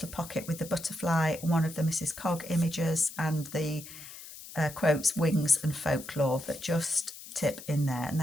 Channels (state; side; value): noise; left; hiss, 14 dB below the sound